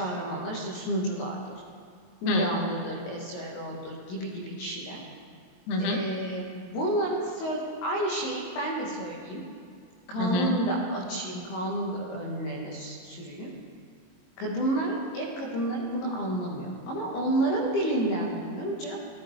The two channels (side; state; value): right; late; 22 ms